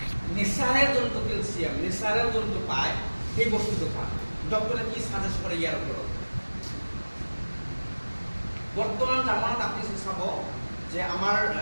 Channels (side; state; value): both; inverted; correlation -1.00